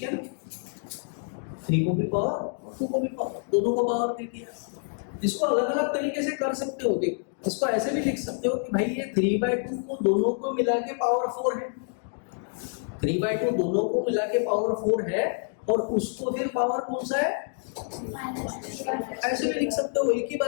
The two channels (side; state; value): right; silent; 60 dB below the other